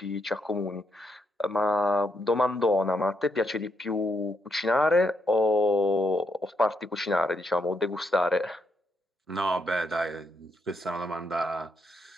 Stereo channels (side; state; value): both; normal; correlation 0.79